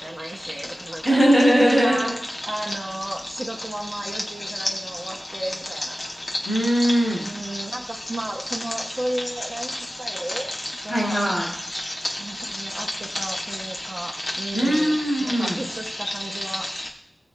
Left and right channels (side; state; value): both; normal; correlation 0.95